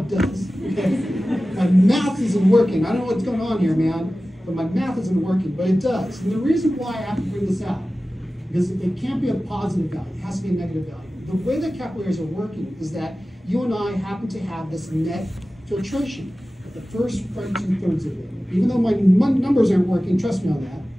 does. Okay? My math isn't working. I don't know what's going on here, man, but my math isn't working, but it does. And the reason why I have to bring this out, because it can't be a positive value, it has to be a negative value. The way that capillaries are working is that you and I happen to have this net filtration at the first right 2/3 of it. Even though my numbers aren't working, trust me on that.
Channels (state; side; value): normal; both; correlation 0.96